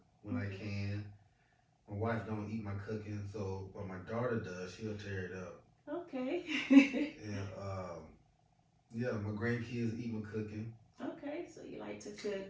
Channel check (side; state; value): both; identical; correlation 1.00